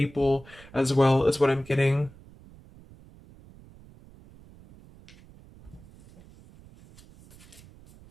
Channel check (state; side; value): noise; right; rumble, 23 dB below the sound